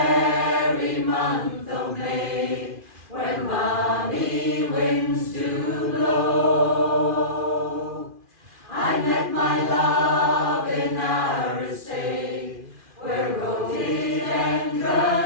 month of May, when balmy winds do blow, I met my love in Arisaig, where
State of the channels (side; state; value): left; late; 2.4 ms